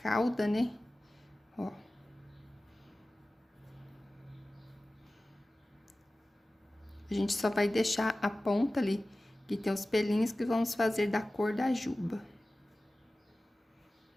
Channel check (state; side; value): normal; both; correlation 0.97